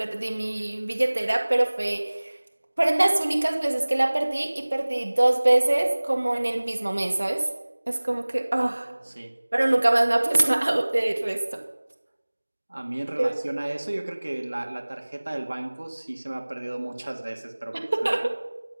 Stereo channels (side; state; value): both; inverted; correlation -1.00